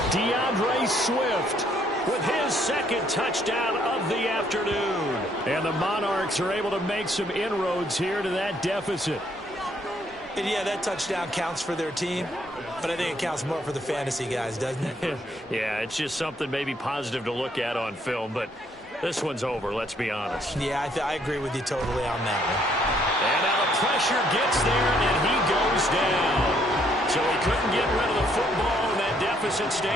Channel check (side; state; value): both; normal; correlation 0.68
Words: DeAndre Swift with his 2nd touchdown of the afternoon. And the Monarchs are able to make some inroads here to that deficit. And yeah, that touchdown counts for their team, but I think it counts more for the fantasy guys, doesn't it? Yeah, it's just something maybe positive to look at on film, but This one's over, let's be honest. Yeah, I agree with you totally on that one. And now the pressure gets there, and he goes down. So he couldn't get rid of the football, and that deficit